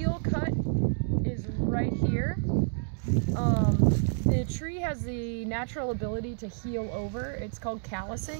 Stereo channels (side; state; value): left; silent; digital silence